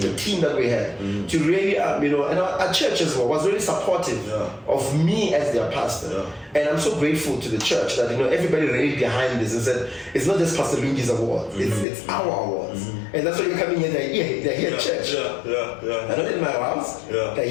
the team that we had to really and our church as well was really supportive of me as their pastor. And I'm so grateful to the church that everybody really behind this and said it's not just Pastor Lungi's awards, it's our awards. And that's why you're coming here. They're here at church. They're not in my house. They're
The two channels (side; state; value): right; drops out; at 11.9 s